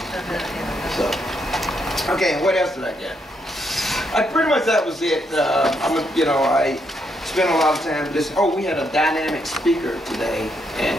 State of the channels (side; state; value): both; normal; correlation 0.77